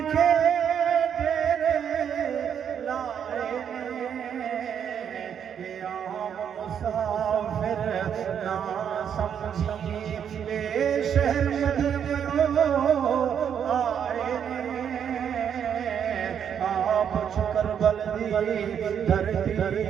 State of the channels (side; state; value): left; quieter; 8.3 dB